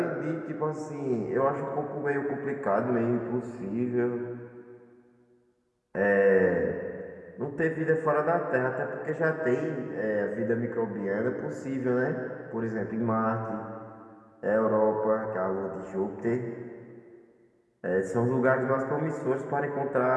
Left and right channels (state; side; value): identical; both; correlation 1.00